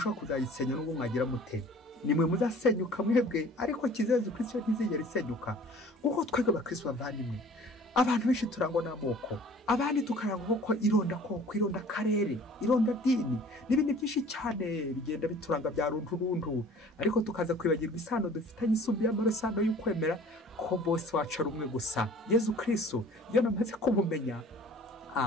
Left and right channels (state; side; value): normal; both; correlation 0.48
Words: kuzayisenya n'ubwo mwagira mute. Nimwe muzasenyuka mwebwe, ariko kiza Yezu Kristo ntizigera isenyuka. Kuko twebwe abakristo bavandimwe, abantu benshi turangwa n'amoko, abandi tukarangwa ko ironda koko, ironda karere, ironda dini n'ibindi byinshi cyane bigenda bituranga bya runturuntu, ariko tukaza kwibagirwa isano dufitanye isumbi y'amarosano y'ukwemera ko bose wacu ari umwe gusa, Yezu Kristo. Iyo namaze kumumenya,